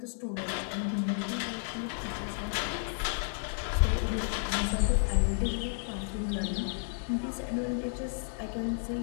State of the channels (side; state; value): right; silent; digital silence